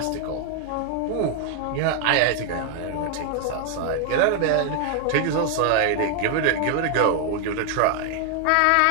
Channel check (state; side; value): different; both; correlation 0.00